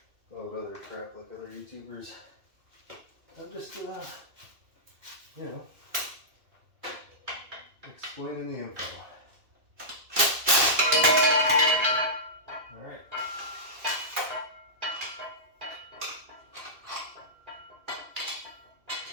all of other crap like other YouTubers. I'm just, you know, explaining the info. All right.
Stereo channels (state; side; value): late; left; 2.2 ms